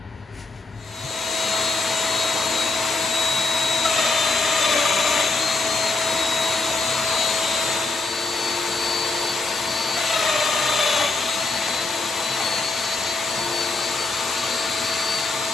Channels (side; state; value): right; quieter; 3.5 dB